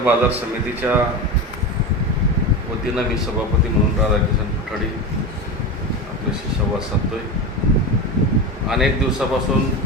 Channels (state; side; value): normal; both; correlation 0.23